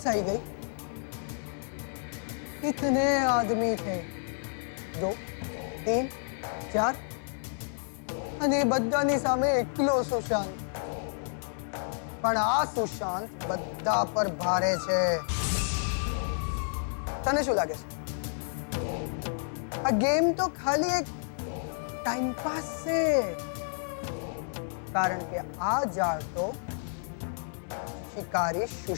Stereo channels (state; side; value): silent; right; digital silence